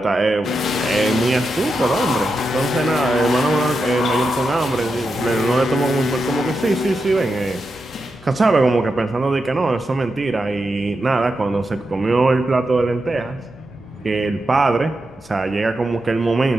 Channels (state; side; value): noise; left; hum, 28 dB below the sound